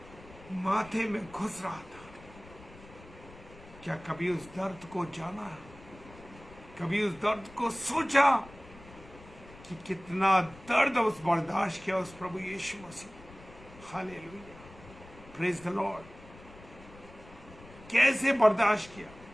माथे में घुस रहा था, क्या कभी उस दर्द को जाना, कभी उस दर्द को सोचा कि कितना दर्द उस बर्दाश्त किया उस प्रभु यीशु मसीह। Hallelujah, praise the Lord. कैसे बर्दाश्त किया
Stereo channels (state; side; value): noise; left; rumble, 20 dB below the sound